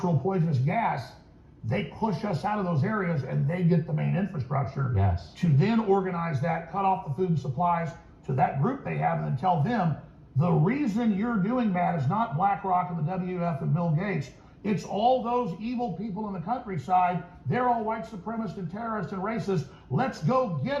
poisonous gas, they push us out of those areas and they get the main infrastructure to then organize that, cut off the food and supplies to that group they have, and then tell them the reason you're doing that is not BlackRock and the WF and Bill Gates. It's all those evil people in the countryside. They're all white supremacists and terrorists and racists. Let's go get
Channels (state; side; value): identical; both; correlation 1.00